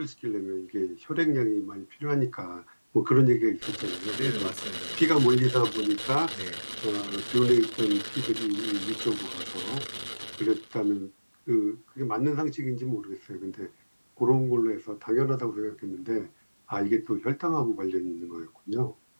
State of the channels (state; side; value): inverted; both; correlation -1.00